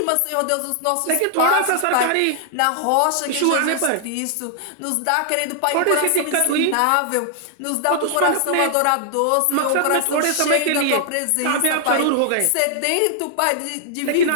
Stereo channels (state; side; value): different; both; correlation 0.00